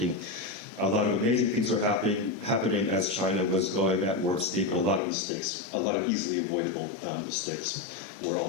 A lot of amazing things were happening as China was going at warp speed, but a lot of mistakes, a lot of easily avoidable mistakes were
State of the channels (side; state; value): right; drops out; at 5.0 s